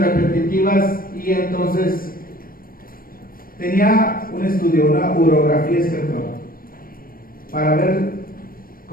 y entonces tenía un estudio, una urografía espectral, para ver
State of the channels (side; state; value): right; late; 0.42 ms